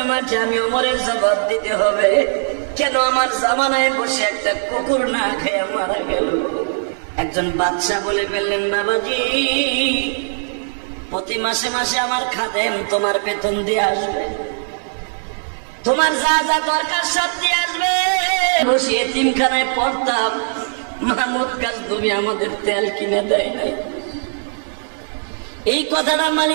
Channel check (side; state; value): left; silent; digital silence